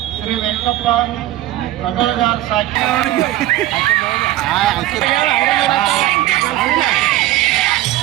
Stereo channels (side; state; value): left; quieter; 14.9 dB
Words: ಶ್ರೀ ವೆಂಕಪ್ಪ ಅಗಲಗಾರ್ ಸಾಕಿ